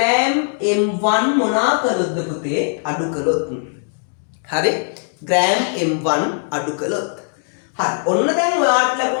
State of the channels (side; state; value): right; silent; digital silence